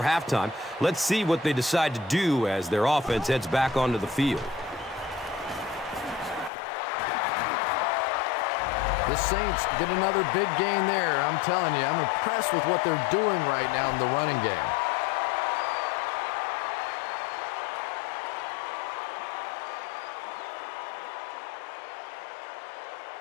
halftime. Let's see what they decide to do as their offense heads back onto the field. The Saints get another big gain there. I'm telling you, I'm impressed with what they're doing right now in the running game.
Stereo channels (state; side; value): drops out; right; at 6.5 s